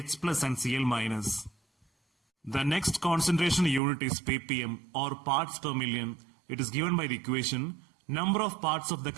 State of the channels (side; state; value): left; drops out; at 3.8 s